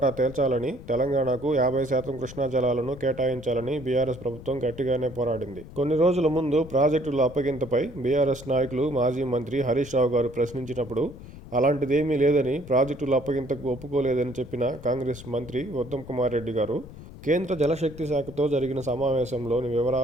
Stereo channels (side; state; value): left; noise; rumble, 16 dB below the sound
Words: తేల్చాలని, తెలంగాణకు 50% కృష్ణా జలాలను కేటాయించాలని బీఆర్ఎస్ ప్రభుత్వం గట్టిగానే పోరాడింది. కొన్ని రోజుల ముందు ప్రాజెక్టుల అప్పగింతపై బీఆర్ఎస్ నాయకులు మాజీ మంత్రి హరీష్ రావు గారు ప్రశ్నించినప్పుడు అలాంటిదేమీ లేదని, ప్రాజెక్టుల అప్పగింతకు ఒప్పుకోలేదని చెప్పిన కాంగ్రెస్ మంత్రి ఉత్తమ్ కుమార్ రెడ్డి గారు కేంద్ర జలశక్తి శాఖతో జరిగిన సమావేశంలోని